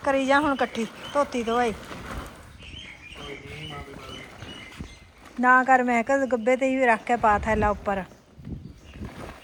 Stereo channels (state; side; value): identical; both; correlation 1.00